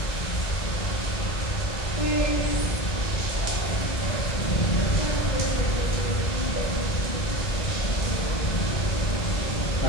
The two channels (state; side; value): late; right; 2.0 ms